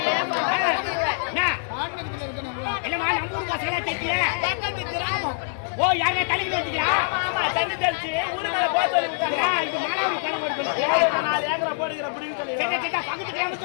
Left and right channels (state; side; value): silent; right; digital silence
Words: இல்லம்மா நம்ம ஊர் பசங்களா தெரிய பக்கத்து கிராமம். ஓ யாரா தண்ணி வச்சுக்கிறா? ஆமா ஆமா, தண்ணி தெளிச்சு ஊரு மேல போக சொல்லி விட்டாங்க. இது மாணவரி கிளம்ப இருக்கு. 4 ஏக்கரை போடுகிற புடிங்க சொல்லி. பக்கத்து கிராமம்